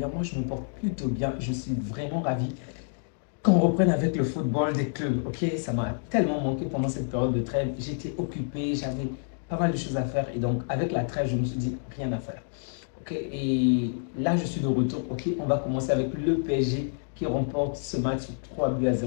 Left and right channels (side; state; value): right; silent; digital silence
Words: Moi, je me porte plutôt bien. Je suis vraiment ravi qu'on reprenne avec le football des clubs. Ok, ça m'a tellement manqué pendant cette période de trêve. J'étais occupé, j'avais pas mal de choses à faire. Et donc, avec la trêve, je me suis dit, rien à faire. Ok, et là, je suis de retour. Ok, on va commencer avec le PSG qui remporte ce match sur 3 buts à